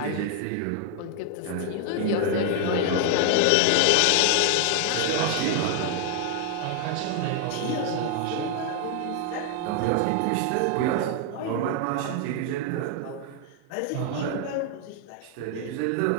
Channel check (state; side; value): different; both; correlation 0.00